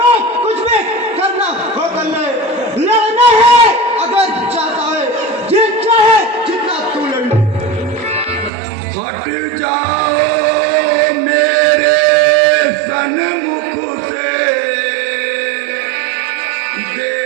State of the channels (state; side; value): drops out; left; at 8.5 s